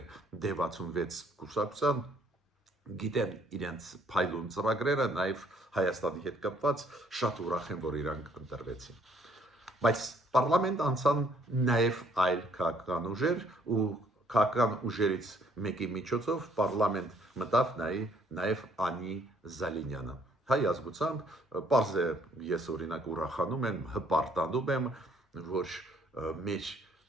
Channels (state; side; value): normal; both; correlation 0.64